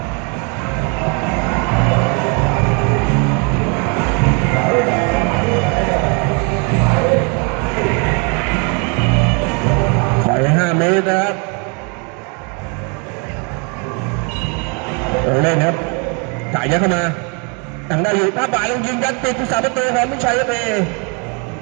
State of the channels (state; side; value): quieter; left; 34.5 dB